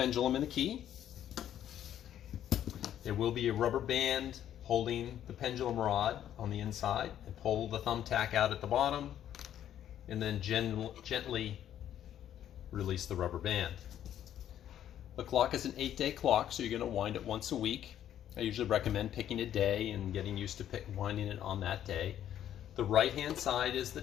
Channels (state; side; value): quieter; right; 10.9 dB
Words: and the key. There will be a rubber band holding the pendulum rod on the inside, and pull the thumbtack out at the bottom and then gently release the rubber band. The clock is an 8-day clock, so you're going to wind it once a week. I usually recommend picking a day and getting used to winding it on that day. The right hand side is the